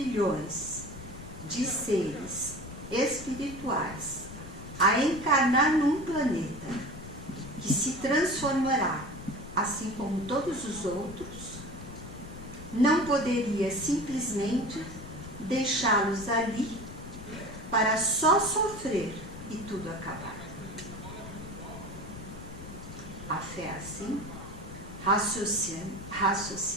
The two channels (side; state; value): left; noise; rumble, 13 dB below the sound